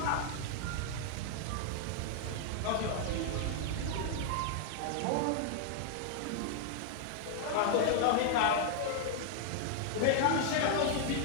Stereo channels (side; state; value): both; different; correlation -0.01